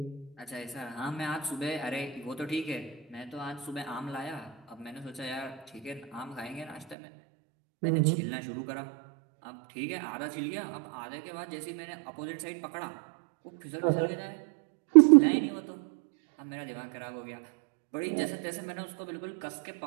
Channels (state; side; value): drops out; left; at 7.0 s